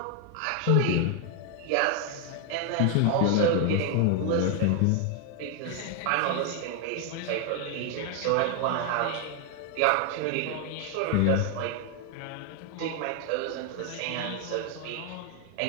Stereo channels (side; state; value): both; different; correlation 0.01